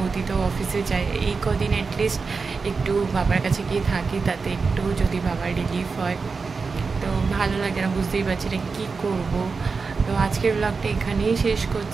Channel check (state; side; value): quieter; left; 4.7 dB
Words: তো অফিসে যায়। এই কদিন অ্যাটলিস্ট একটু বাবার কাছে গিয়ে থাকি, তাতে একটু যদি বাবার রিলিফ হয় তো ভালো লাগে না। বুঝতেই পারছি না কী করবো। তো আজকের ব্লগটা এখানেই শেষ